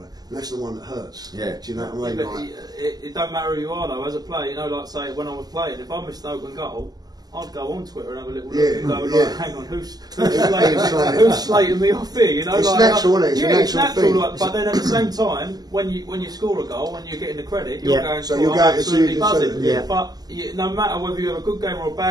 that's the one that hurts. Yeah. Do you know what I mean? Like, it don't matter who you are though. As a player, you know, like say when I was playing, if I missed an open goal, I'd go on Twitter and have a little look and go, like, hang on, who's slating me off here? You know, it's like, natural, isn't it? It's it's natural. Like, but then at the same time, when you score a goal and you're getting the credit, you're going, so you're absolutely buzzing. Yeah. But no matter whether you have a good game or a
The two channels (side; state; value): left; late; 0.19 ms